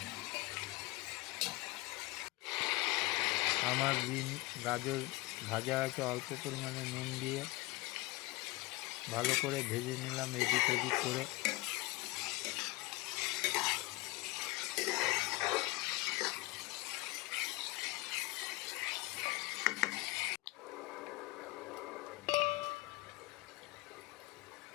আমার বিন গাজর ভাজা আছে, অল্প পরিমাণে নুন দিয়ে ভালো করে ভেজে নিলাম এদিক ওদিক করে।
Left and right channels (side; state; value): right; quieter; 21.9 dB